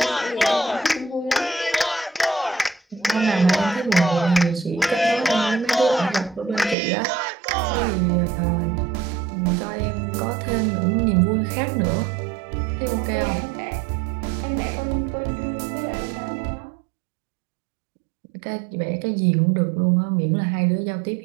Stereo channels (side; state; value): left; drops out; at 6.8 s